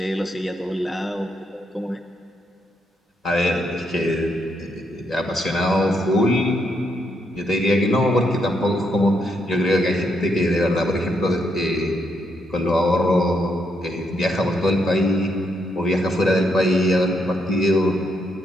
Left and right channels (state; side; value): normal; both; correlation 0.77